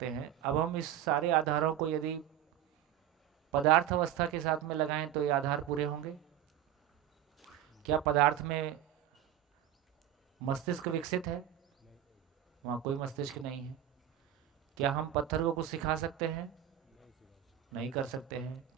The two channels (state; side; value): quieter; left; 10.9 dB